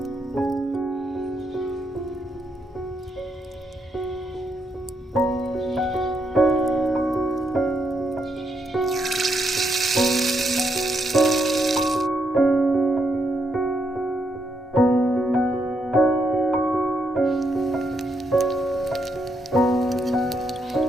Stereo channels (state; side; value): normal; both; correlation 0.78